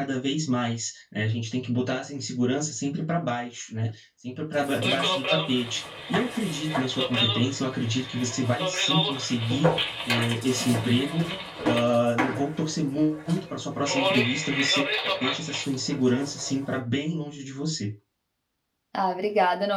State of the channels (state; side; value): identical; both; correlation 1.00